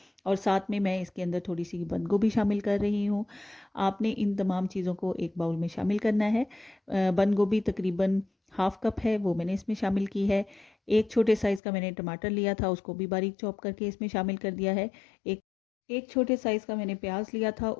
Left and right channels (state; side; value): drops out; right; at 11.6 s